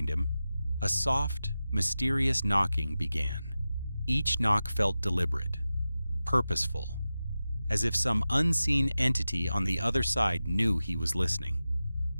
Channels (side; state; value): both; inverted; correlation -0.94